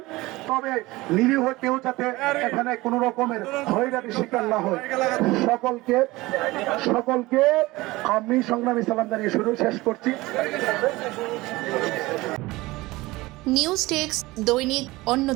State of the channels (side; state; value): left; quieter; 20.3 dB